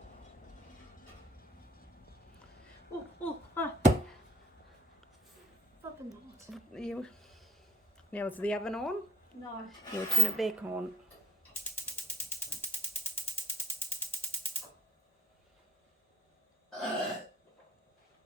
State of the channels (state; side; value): normal; both; correlation 0.68